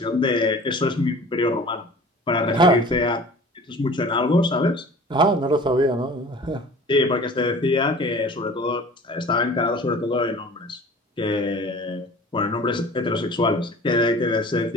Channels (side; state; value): both; normal; correlation 0.43